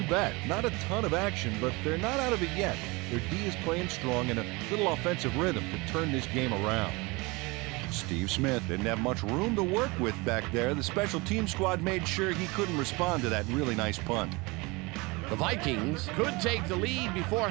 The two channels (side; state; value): left; quieter; 25.4 dB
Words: bet. Not a ton of action, but they're not out of it yet. Their D is playing strong and a little offensive rhythm to turn this game around. Steve Smith didn't have much room to work with back there. The special team squad made sure he couldn't respond to that really nice punt. The Vikings could take the lead before